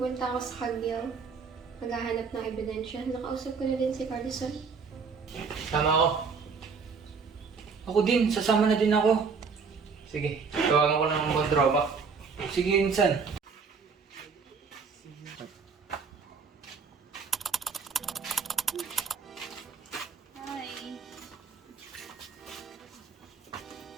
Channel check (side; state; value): left; quieter; 5.3 dB